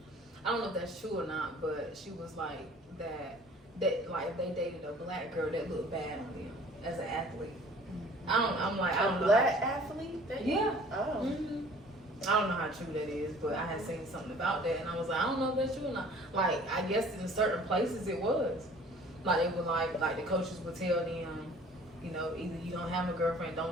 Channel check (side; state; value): both; normal; correlation 0.50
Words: I don't know if that's true or not, but she was like that like if they dated a black girl that looked bad on them as an athlete. I'm like, I don't know. Black athlete? Yeah. Oh. Mm-hmm. I don't know how true that is, but I had seen something about that, and I was like, I don't know if that's true or not. Like, I guess in certain places it was. Like, they would like the coaches would tell them, you know, either you don't have a girlfriend,